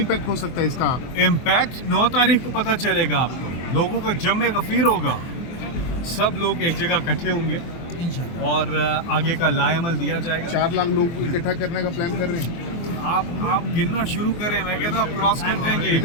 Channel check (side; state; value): right; late; 24 ms